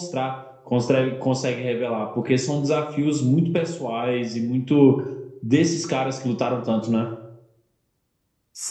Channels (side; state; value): both; identical; correlation 1.00